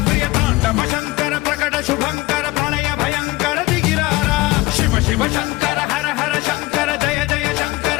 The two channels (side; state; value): right; quieter; 20.1 dB